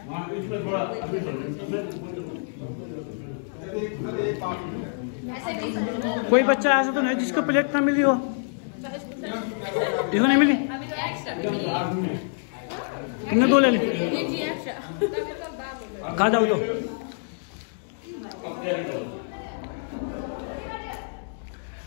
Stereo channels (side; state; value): right; silent; digital silence